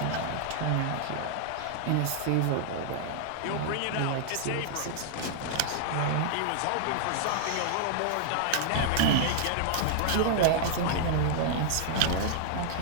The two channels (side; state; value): both; different; correlation -0.01